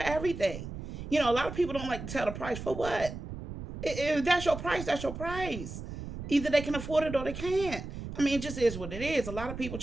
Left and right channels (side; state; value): right; noise; rumble, 9 dB below the sound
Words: A lot of people don't like to tell the price. For what? If that's your price, that's your price. Either they can afford it or they can't. It just is what it is. A lot of people